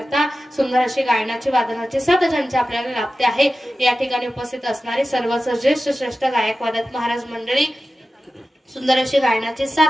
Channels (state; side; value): normal; both; correlation 0.94